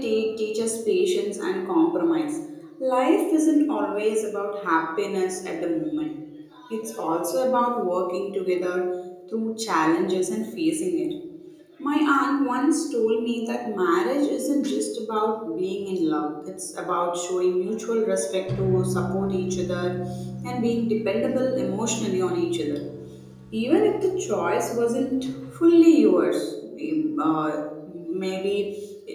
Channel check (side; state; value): both; identical; correlation 1.00